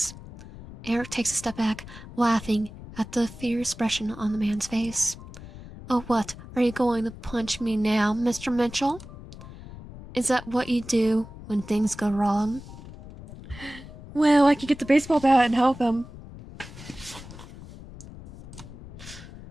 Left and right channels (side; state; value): left; noise; rumble, 15 dB below the sound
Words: Eric takes a step back, laughing at the fear expression on the man's face. Oh, what? Are you going to punch me now, Mr. Mitchell? Is that what you do when things go wrong? Well, I could get the baseball bat and help him.